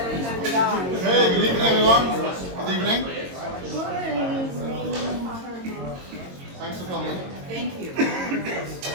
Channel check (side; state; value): left; late; 22 ms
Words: good evening, everyone. Good evening. Thanks for coming. Thank you.